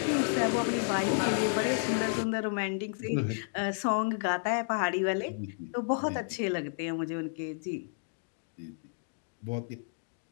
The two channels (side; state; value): right; silent; digital silence